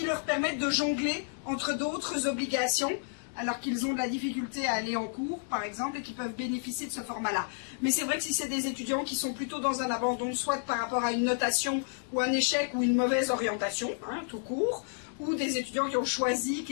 leur permettent de jongler entre d'autres obligations, alors qu'ils ont de la difficulté à aller en cours, par exemple, et qui peuvent bénéficier de ce format-là. Mais c'est vrai que si c'est des étudiants qui sont plutôt dans un abandon, soit par rapport à une notation, ou un échec, ou une mauvaise orientation, tout court, ou des étudiants qui ont choisi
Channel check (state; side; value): silent; right; digital silence